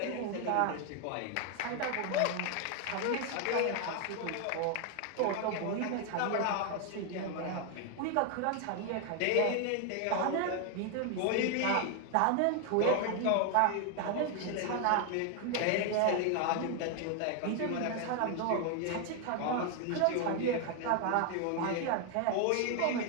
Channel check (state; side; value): different; both; correlation 0.01